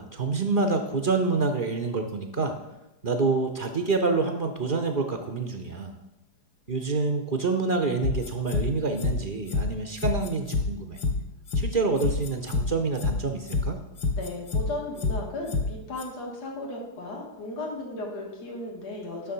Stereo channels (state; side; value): late; right; 4.9 ms